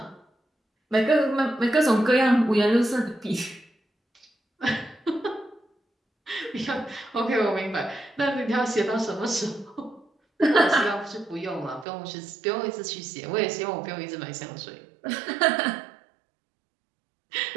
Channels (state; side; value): drops out; left; at 11.9 s